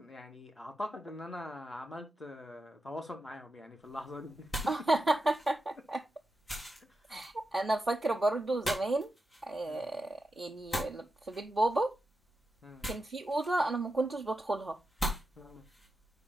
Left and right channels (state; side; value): normal; both; correlation 0.89